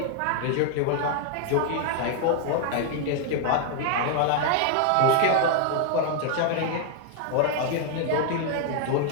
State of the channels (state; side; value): different; both; correlation 0.00